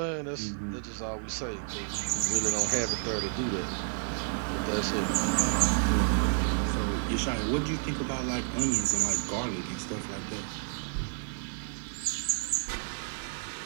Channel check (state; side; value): silent; left; 57 dB below the other